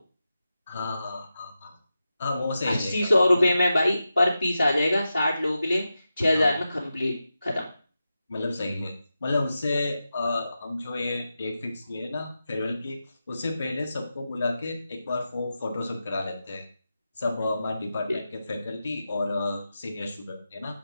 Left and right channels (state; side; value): inverted; both; correlation -0.91